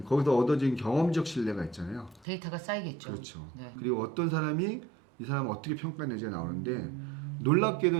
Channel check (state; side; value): drops out; left; at 2.2 s